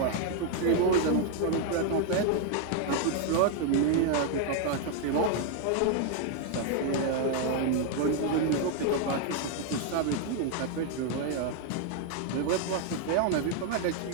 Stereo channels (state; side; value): different; both; correlation 0.00